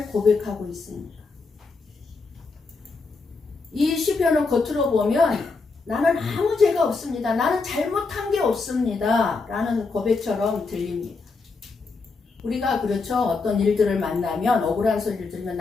고백하고 있습니까? 이 시편을 겉으로 보면 나는 아무 죄가 없습니다. 나는 잘못한 게 없습니다. 라는 고백처럼 들립니다. 우리가 그렇죠. 어떤 일들을 만나면 억울한 소리를 들으면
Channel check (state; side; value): quieter; right; 4.2 dB